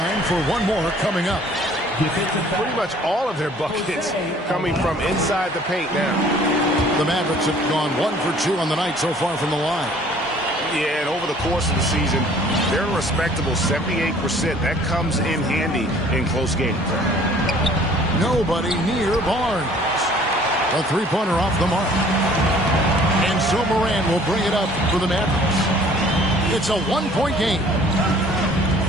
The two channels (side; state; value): both; normal; correlation 0.54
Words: for one more coming up. Pretty much all of their buckets coming from inside the paint now. The Mavericks have gone 1 for 2 on the night so far from the line. Yeah, and over the course of the season, they're a respectable 78%. That comes in handy in close games. Nobody near Barnes. A three-pointer off the mark. And so Morant will bring it up for the Mavericks. It's a one-point game.